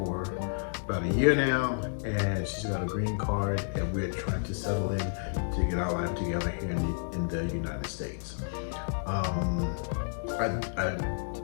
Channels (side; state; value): right; silent; digital silence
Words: about a year now, and she's got a green card, and we're trying to settle in to get our life together here in the United States. I